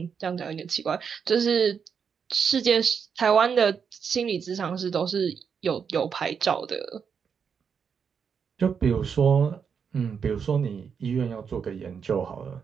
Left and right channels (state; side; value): quieter; left; 6.6 dB